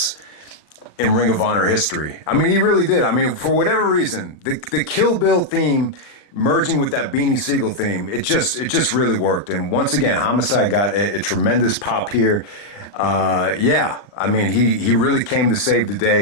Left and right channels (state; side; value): late; right; 40 ms